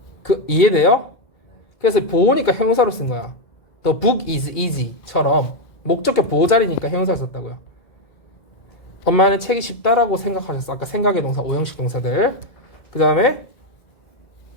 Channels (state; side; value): late; right; 2.0 ms